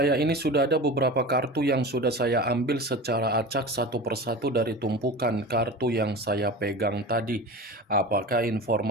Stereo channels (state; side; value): normal; both; correlation 0.31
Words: ini sudah ada beberapa kartu yang sudah saya ambil secara acak satu persatu dari tumpukan kartu yang saya pegang tadi. Apakah